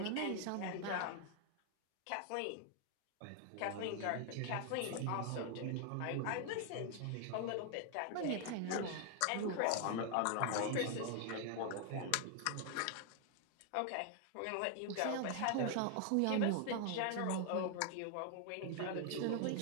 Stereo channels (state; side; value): different; both; correlation 0.00